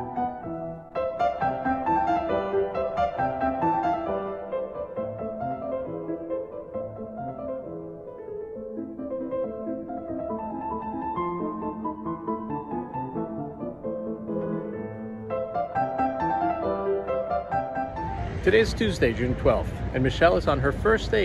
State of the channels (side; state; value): both; identical; correlation 1.00